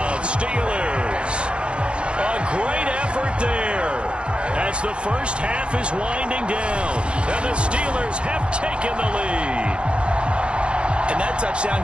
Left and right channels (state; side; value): late; left; 0.057 ms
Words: Steelers. A great effort there as the first half is winding down. And the Steelers have taken the lead. And that